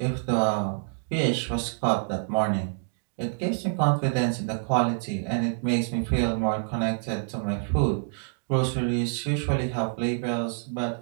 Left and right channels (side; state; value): left; silent; digital silence